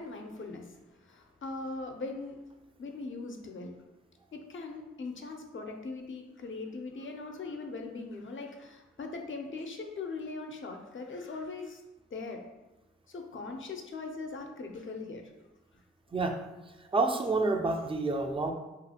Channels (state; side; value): normal; both; correlation 0.49